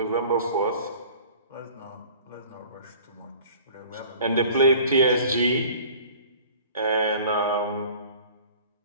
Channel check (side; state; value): both; inverted; correlation -0.47